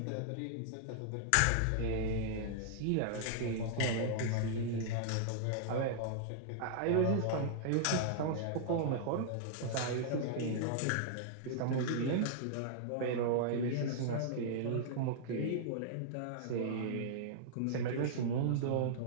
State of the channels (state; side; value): different; both; correlation -0.01